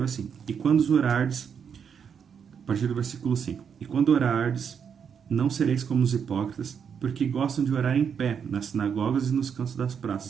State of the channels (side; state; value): left; quieter; 7.2 dB